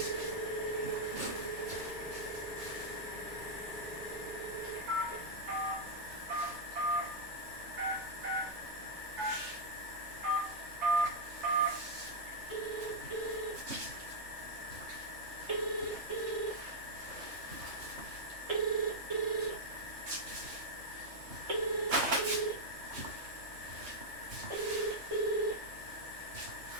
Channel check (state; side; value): late; left; 2.7 ms